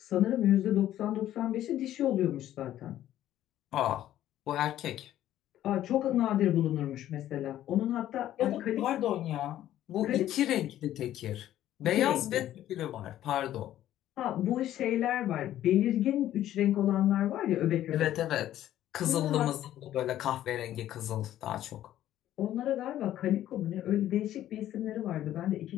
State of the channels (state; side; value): quieter; right; 12.6 dB